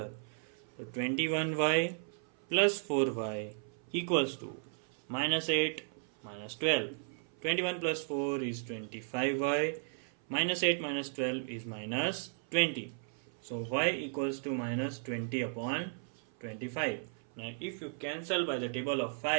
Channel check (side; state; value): left; silent; 54 dB below the other